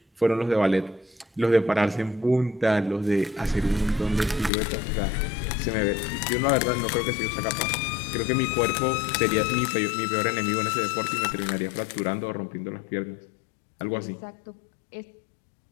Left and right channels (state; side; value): drops out; right; at 4.5 s